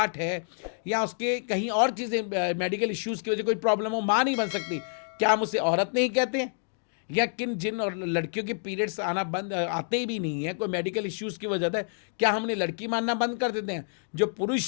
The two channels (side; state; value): right; silent; digital silence